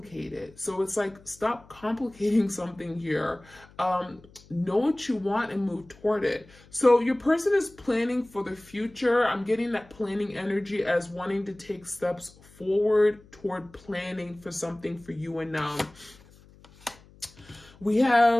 So it's like, stop complicating something here. Know what you want and move toward it. So your person is planning for the future. I'm getting that planning energy as wanting to take steps forward toward planning for something for you and them. We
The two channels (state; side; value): noise; left; hum, 25 dB below the sound